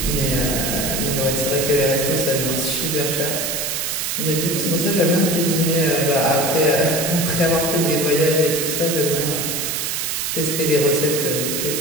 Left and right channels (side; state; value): right; noise; hiss, 1 dB below the sound